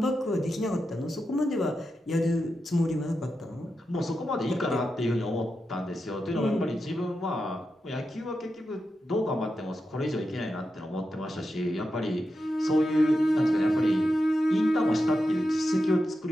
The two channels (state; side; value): normal; both; correlation 0.89